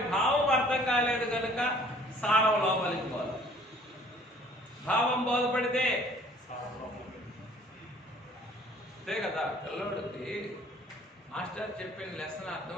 భావం అర్థం కాలేదు కనుక సారం లోపలికి పోదు. భావం బోధపడితే అంతే కదా. పిల్లోడికి మాస్టర్ చెప్పిన లెసన్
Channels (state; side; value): normal; both; correlation 0.55